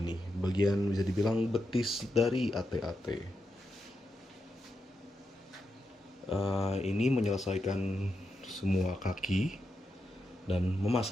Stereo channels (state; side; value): normal; both; correlation 0.86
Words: bagian bisa dibilang betis dari AT-AT. Ini menyelesaikan semua kaki dan